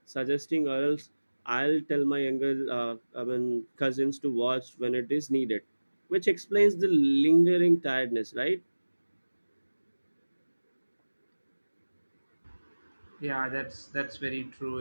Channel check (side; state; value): both; inverted; correlation -1.00